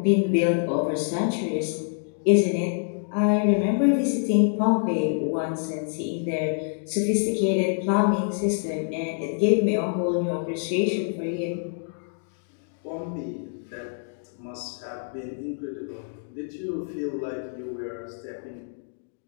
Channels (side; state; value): right; silent; 61 dB below the other